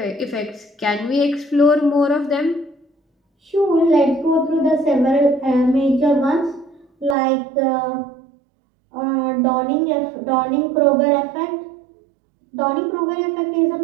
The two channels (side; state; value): left; drops out; at 7.2 s